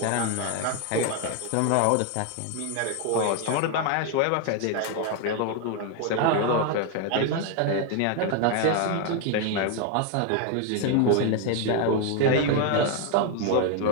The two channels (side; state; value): both; different; correlation 0.01